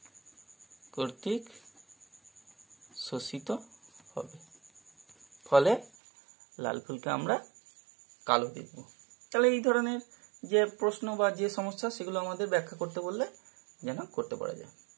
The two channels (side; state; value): left; drops out; at 5.9 s